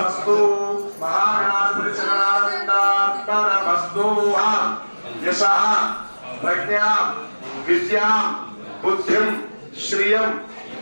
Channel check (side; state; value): both; inverted; correlation -1.00